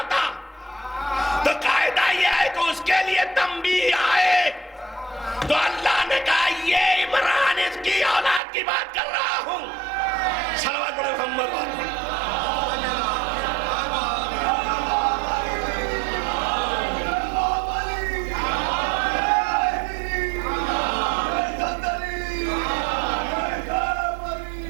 تو قاعدہ یہ ہے کہ اس کے لیے تنبیہ آئے. تو اللہ نے کہا یہ عمران اس کی اولاد کی بات کر رہا ہوں. صلوات پڑھیں محمد.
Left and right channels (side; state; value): left; drops out; at 8.4 s